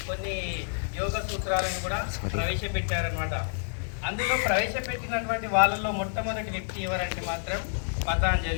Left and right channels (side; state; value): right; silent; 59 dB below the other